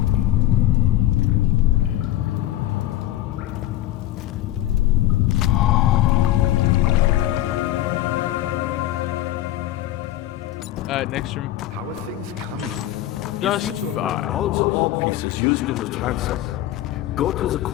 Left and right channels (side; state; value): right; quieter; 14.0 dB